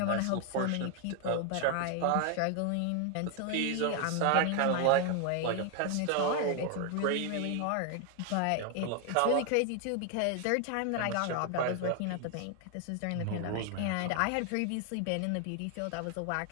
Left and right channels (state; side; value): different; both; correlation 0.01